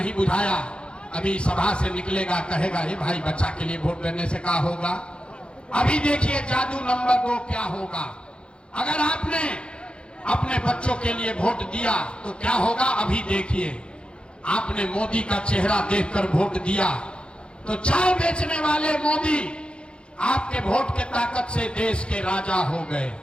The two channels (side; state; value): right; late; 0.056 ms